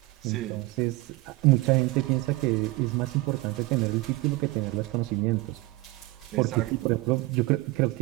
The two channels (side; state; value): left; quieter; 20.9 dB